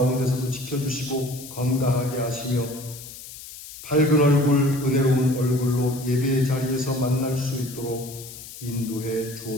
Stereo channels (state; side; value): noise; left; hiss, 14 dB below the sound